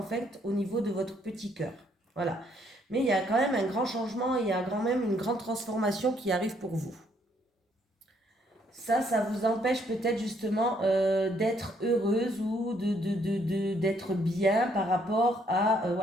fait au niveau de votre petit cœur. Voilà. Mais il y a quand même un grand changement, il y a quand même une grande transformation qui arrive pour vous. Ça vous empêche peut-être justement d'être heureuse ou d'être bien par rapport à...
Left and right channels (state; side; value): normal; both; correlation 0.69